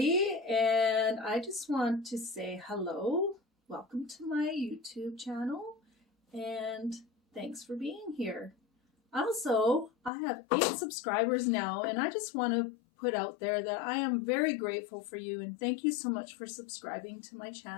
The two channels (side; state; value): right; drops out; at 10.1 s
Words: and I just want to say hello. Welcome to my YouTube channel, and thanks for being here. Also, I have 8 subscribers now, and I just want to put out there that I am very grateful for you, and thank you so much for subscribing to my